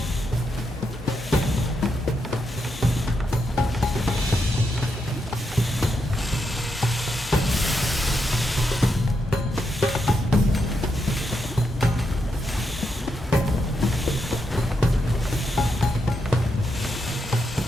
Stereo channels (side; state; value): both; normal; correlation 0.82